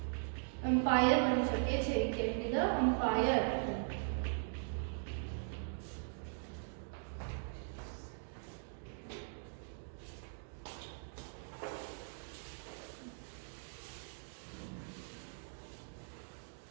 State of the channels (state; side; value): silent; left; digital silence